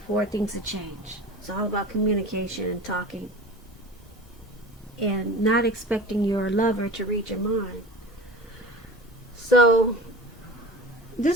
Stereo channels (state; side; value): normal; both; correlation 0.36